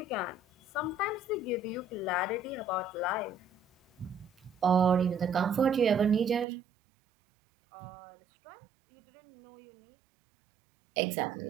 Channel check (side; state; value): left; drops out; at 6.5 s